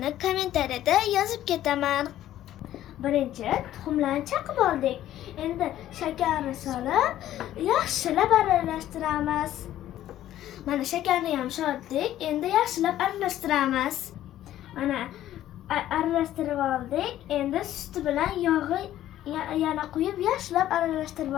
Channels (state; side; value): quieter; right; 12.8 dB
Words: kommentariyada yozib ketaman. Birinchi tuxumlarni chaqib oldik. Endi shakarni solib, yaxshilab aralashtiramiz. Mana shakarni ham soldik. Endi yaxshilab aralashtiramiz. Mana aralashtirib oldik. Endi suti bilan yog'i yana quyib yaxshilab aralashtirib